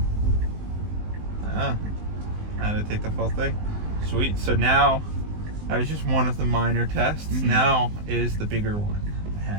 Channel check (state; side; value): late; left; 19 ms